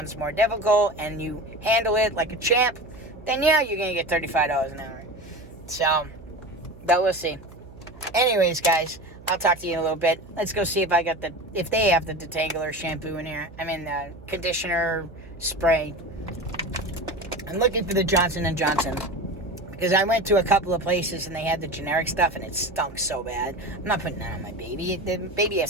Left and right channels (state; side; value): noise; right; hum, 19 dB below the sound